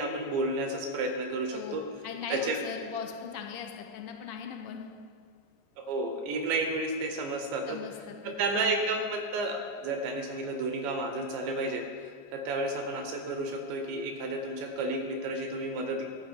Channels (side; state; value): left; late; 14 ms